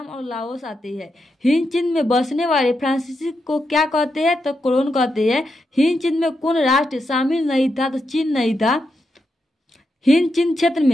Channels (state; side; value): normal; both; correlation 0.85